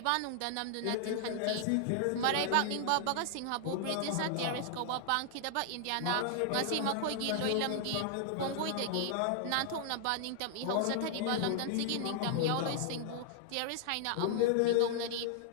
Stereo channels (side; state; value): both; different; correlation 0.00